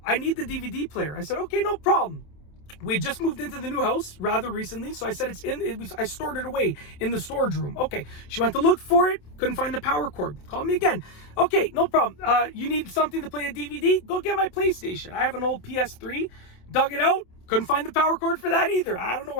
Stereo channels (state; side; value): late; right; 27 ms